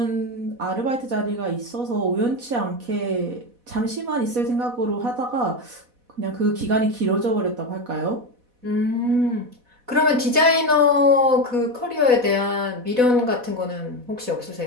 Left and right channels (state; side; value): late; left; 4.1 ms